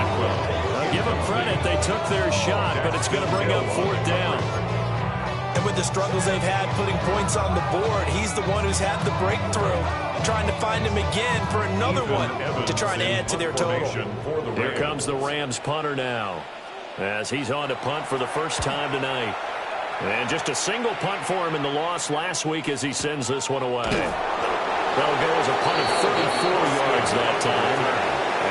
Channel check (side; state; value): both; identical; correlation 1.00